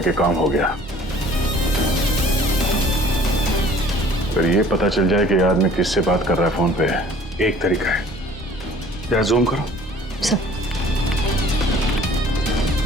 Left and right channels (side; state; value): both; normal; correlation 0.52